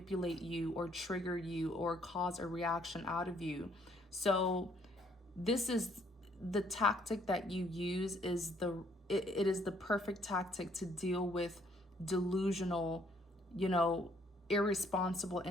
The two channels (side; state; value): both; normal; correlation 0.65